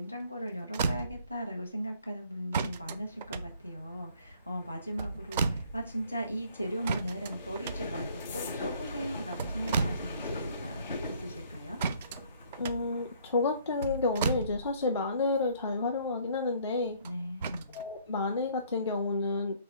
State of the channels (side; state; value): both; inverted; correlation -0.60